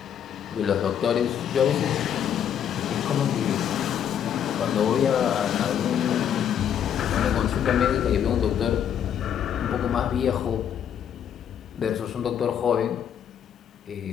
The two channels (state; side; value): quieter; right; 9.1 dB